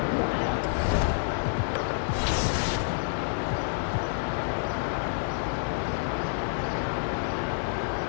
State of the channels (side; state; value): right; silent; digital silence